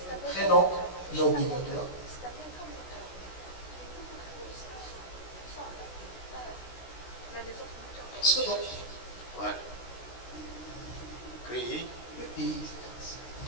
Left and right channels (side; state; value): right; late; 16 ms